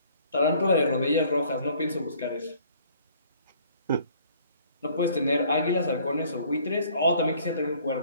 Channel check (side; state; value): both; inverted; correlation -0.58